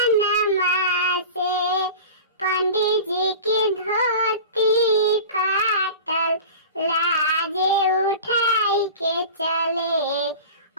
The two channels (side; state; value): both; inverted; correlation -0.35